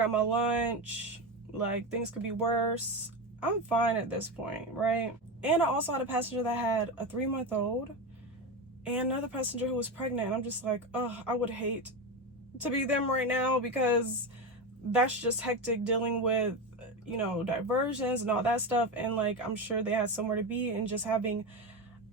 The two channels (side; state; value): both; normal; correlation 0.18